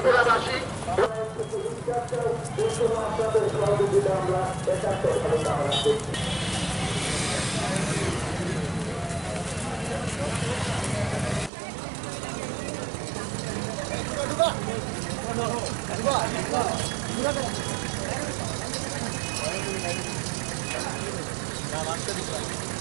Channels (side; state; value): left; drops out; at 11.5 s